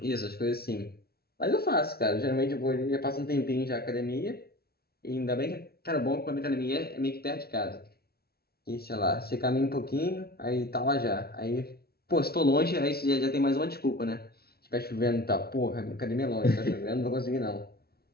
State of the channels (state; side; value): late; right; 0.45 ms